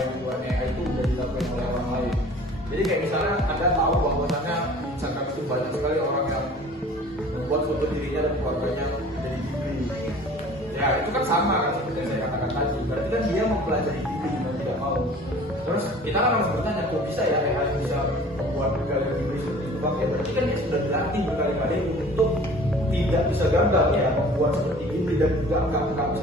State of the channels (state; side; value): normal; both; correlation 0.47